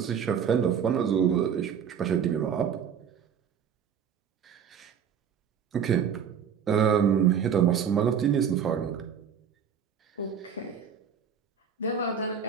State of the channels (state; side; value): quieter; left; 7.6 dB